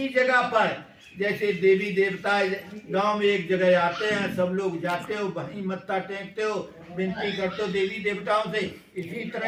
जगह पर जैसे देवी देवता गांव में एक जगह आते हैं, सब लोग जाते हो, वहीं मत्था टेकते हो, विनती करते हो देवी देवताओं से। इसी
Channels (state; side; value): identical; both; correlation 1.00